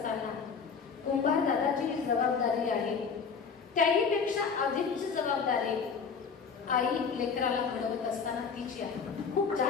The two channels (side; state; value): right; quieter; 5.8 dB